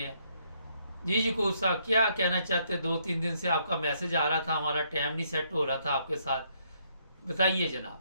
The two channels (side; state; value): both; inverted; correlation -0.71